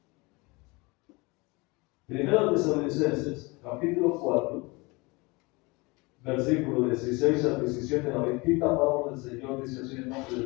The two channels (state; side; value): quieter; right; 25.7 dB